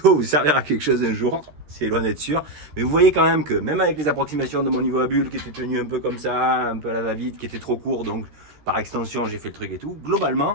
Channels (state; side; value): late; left; 13 ms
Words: vous servira à quelque chose un jour. C'est loin d'être sûr. Mais vous voyez quand même que même avec les approximations de mon niveau à bulle qui était tenu un peu comme ça, un peu à la va-vite, qui était trop court, donc par extension, j'ai fait le truc et tout.